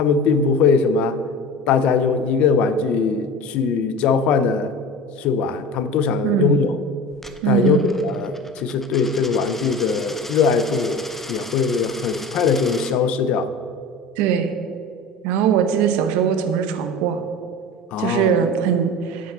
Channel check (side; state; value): both; normal; correlation 0.34